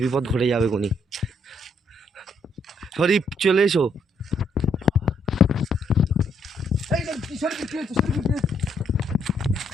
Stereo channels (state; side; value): normal; both; correlation 0.71